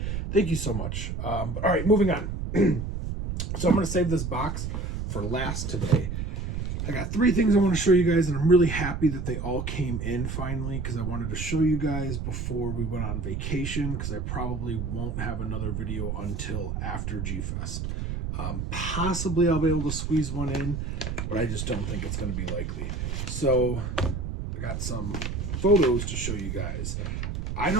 Thank you so much. All right, moving on. So I'm going to save this box for last today. I got 3 things I want to show you guys, and I'm really happy that they all came in finally because I wanted to show you guys before we went on vacation because I probably won't have another video until after G-Fest. Possibly I'll be able to squeeze one in, but I just don't think it's going to be likely. So I got some photos to show you guys. I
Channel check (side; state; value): right; noise; rumble, 3 dB below the sound